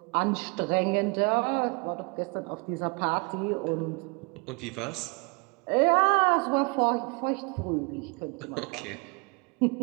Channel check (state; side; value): quieter; left; 31.4 dB